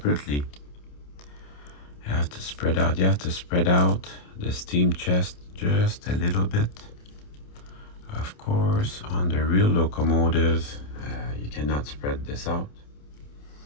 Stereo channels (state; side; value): late; right; 28 ms